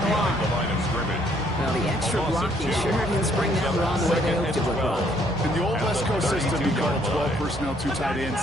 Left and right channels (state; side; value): normal; both; correlation 0.66